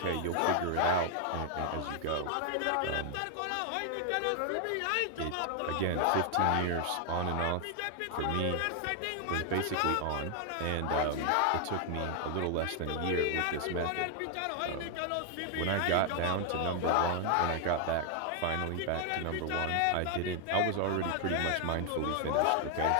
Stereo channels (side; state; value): both; different; correlation 0.00